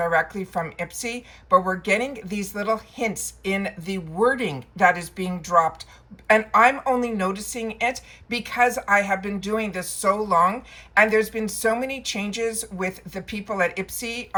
from IPSY, but we're getting these little hints in the wording that is being dropped, and I'm only noticing it because I have been doing this so long, and there's been so many changes with the people at IPSY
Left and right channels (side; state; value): both; identical; correlation 1.00